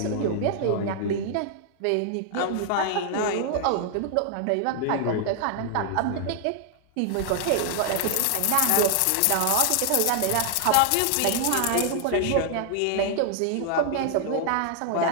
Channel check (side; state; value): both; different; correlation 0.00